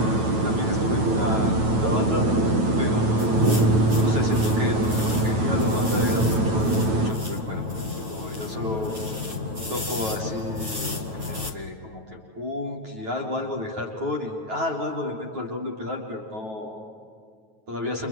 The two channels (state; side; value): late; left; 9.2 ms